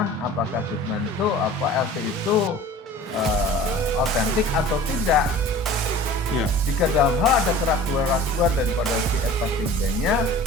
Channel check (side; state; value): both; normal; correlation 0.42